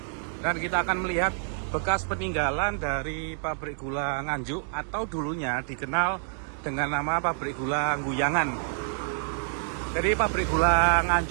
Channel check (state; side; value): silent; left; digital silence